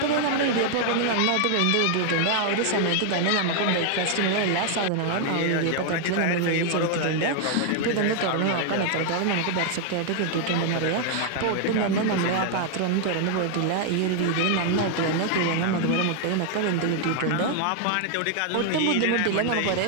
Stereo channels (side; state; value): both; different; correlation 0.00